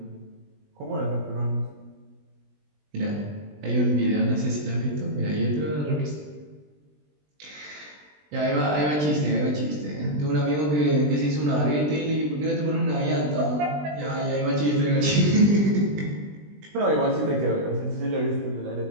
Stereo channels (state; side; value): late; left; 20 ms